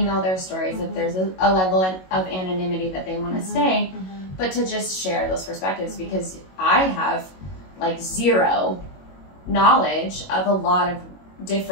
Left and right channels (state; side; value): late; right; 22 ms